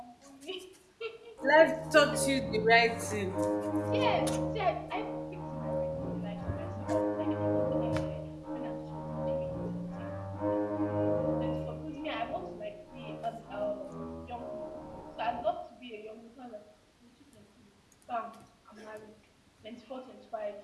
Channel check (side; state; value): both; identical; correlation 1.00